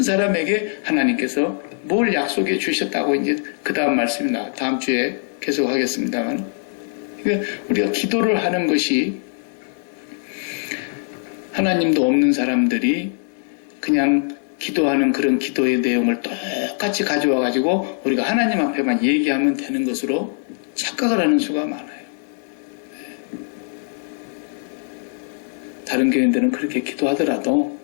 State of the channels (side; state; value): right; silent; 64 dB below the other